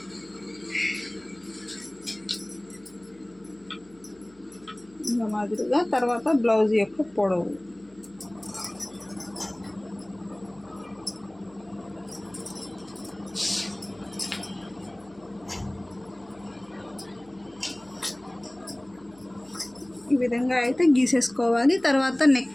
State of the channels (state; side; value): noise; left; hum, 28 dB below the sound